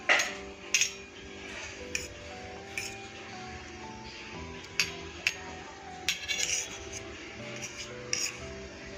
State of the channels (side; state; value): both; identical; correlation 1.00